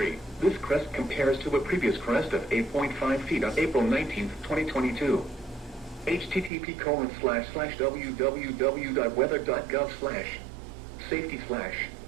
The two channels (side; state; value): left; drops out; at 6.5 s